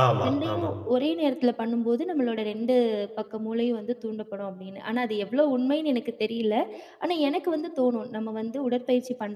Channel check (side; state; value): both; identical; correlation 1.00